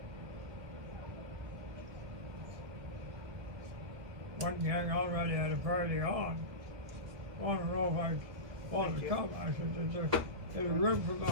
One gang already had a party on. Wanted to know if I wanted to come. I said, there's room for the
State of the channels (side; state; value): left; late; 1.8 ms